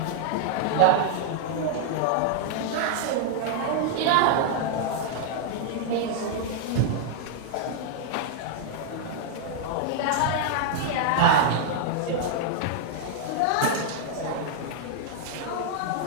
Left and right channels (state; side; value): different; both; correlation 0.00